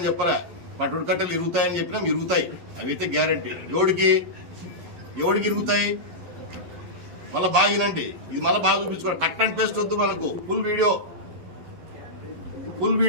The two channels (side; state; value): left; late; 11 ms